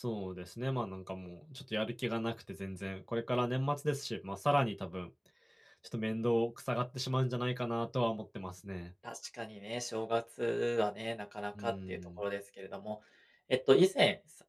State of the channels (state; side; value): identical; both; correlation 1.00